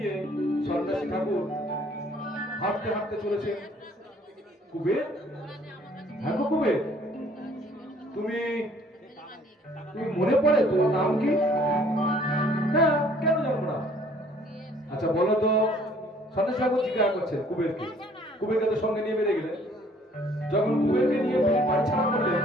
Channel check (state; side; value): normal; both; correlation 0.58